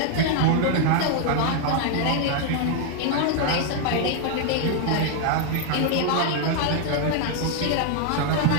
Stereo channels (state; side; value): different; both; correlation 0.01